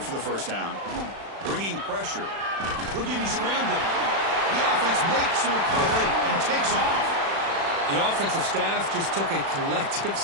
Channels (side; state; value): left; late; 36 ms